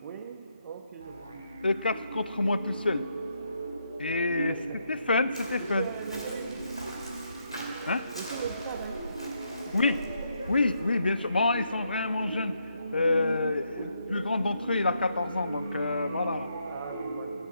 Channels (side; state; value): both; inverted; correlation -0.78